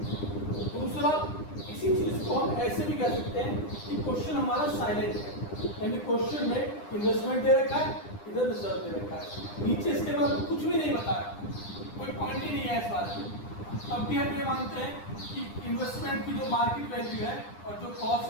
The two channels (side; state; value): right; late; 9.9 ms